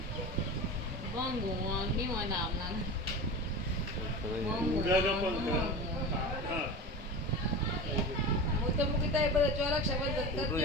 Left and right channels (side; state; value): both; normal; correlation 0.29